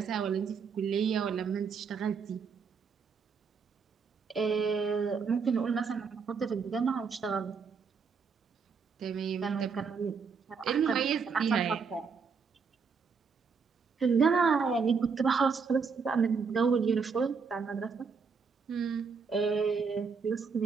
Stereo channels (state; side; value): quieter; left; 5.5 dB